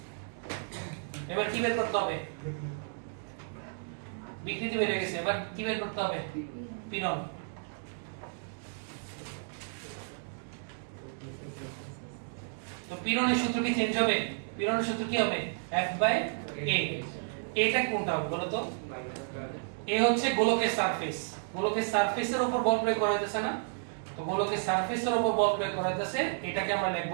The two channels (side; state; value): left; silent; digital silence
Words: এবার কি বের করতে হবে? বিকৃতি বের হয়ে গেছে, এবার কি বের করতে হবে? পীড়ন। তো পীড়নের সূত্র কি চেঞ্জ হবে? পীড়নের সূত্র কি হবে? F by A। এটা কোনটা হবে বলো তো? এ হচ্ছে গোলকের সারফেস। গোলকের সারফেসের উপর বল প্রয়োগ করা হইতেছে না? তো গোলকের সারফেসের উপর বল প্রয়োগ করা হইতেছে, এটাকে আমরা লিখব